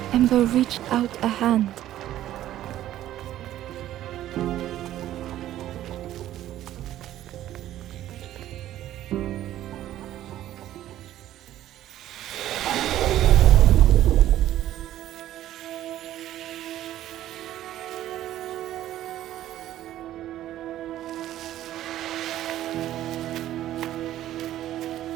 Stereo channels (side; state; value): left; quieter; 13.1 dB